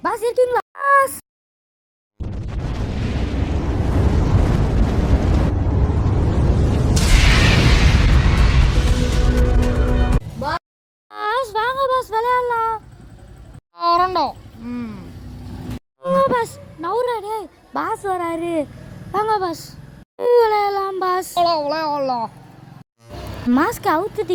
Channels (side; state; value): both; identical; correlation 1.00